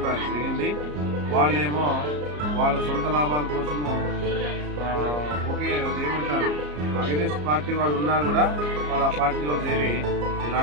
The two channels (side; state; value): left; late; 34 ms